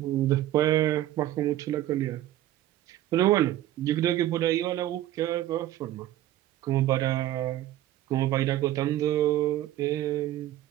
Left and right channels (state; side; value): quieter; left; 13.6 dB